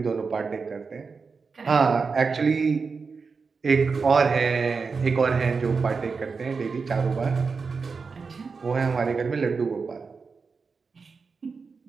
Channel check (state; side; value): quieter; left; 4.9 dB